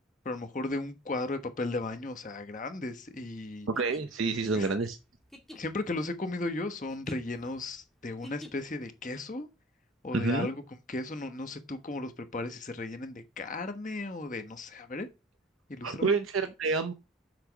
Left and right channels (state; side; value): normal; both; correlation 0.40